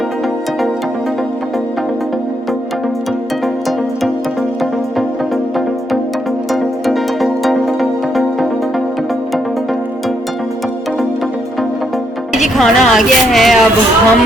जी खाना आ गया है, अब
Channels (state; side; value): normal; both; correlation 0.76